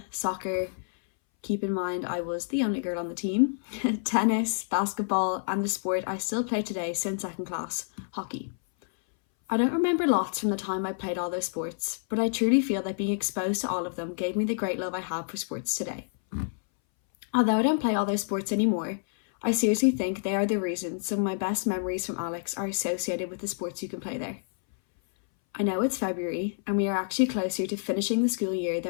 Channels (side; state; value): right; silent; 59 dB below the other